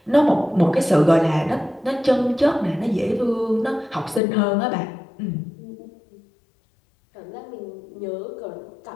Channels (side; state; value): right; drops out; at 4.2 s